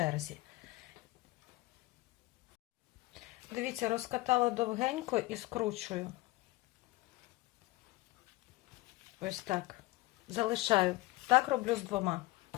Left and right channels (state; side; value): quieter; right; 19.5 dB